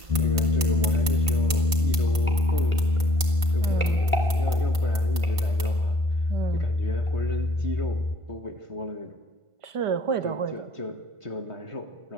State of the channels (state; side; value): late; left; 1.5 ms